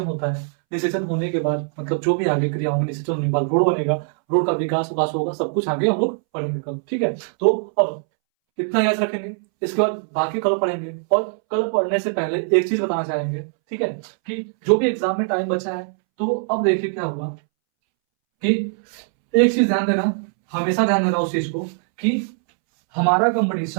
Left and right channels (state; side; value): silent; left; 64 dB below the other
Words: होता है। निषेचन होने के बाद मतलब जो भी आगे क्रिया होंगी, निषेचन होने के बाद रोड बनेगा, रोड का विकास होगा, सब कुछ आगे हम लोग पढ़ेंगे कल। ठीक है, तो अब इतना याद रखेंगे, इसके बाद बाकी कल पढ़ेंगे। और कल पढ़ने से पहले एक चीज बताना चाहेंगे, ठीक है, कि जो भी एग्जाम में टाइम बचा है, तो अब देखिए क्या हुआ कि एक चीज ध्यान देना, हमेशा ध्यान देना उस चीज को कि हमारा